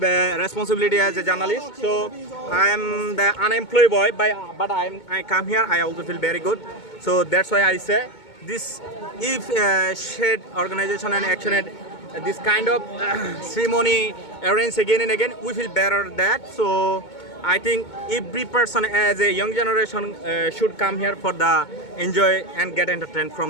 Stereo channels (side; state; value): right; late; 2.2 ms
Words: a responsibility as a journalist. So I am the unemployed boy, but I come here. I also feel very good. So that's why I say this. If shared organization and action at this kind of ceremony arranged again and again, we feel better that. So I think every person as a young generation should come here for the enjoy and get entertained from